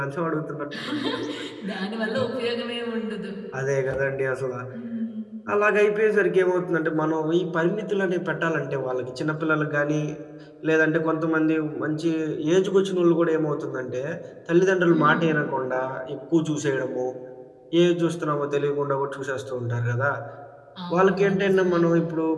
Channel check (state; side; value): identical; both; correlation 1.00